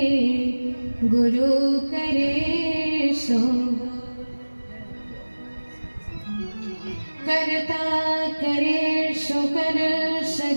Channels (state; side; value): inverted; both; correlation -1.00